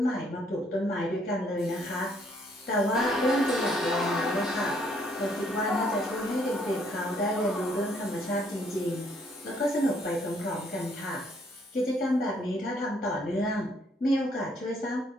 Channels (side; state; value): both; normal; correlation 0.67